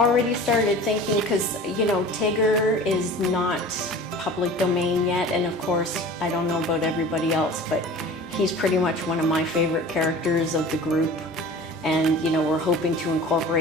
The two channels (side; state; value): both; normal; correlation 0.40